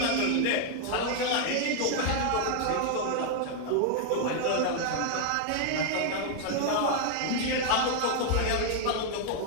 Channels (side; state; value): both; different; correlation 0.00